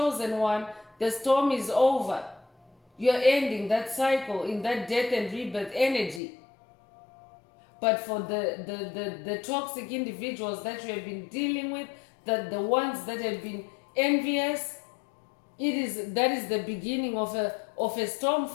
one, the storm is over. You're ending that cycle in that death and rebirth energy. But for the toxic individuals that you have been dealing with, the ones that have been envious, that is the beginning of a storm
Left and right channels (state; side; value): drops out; right; at 6.2 s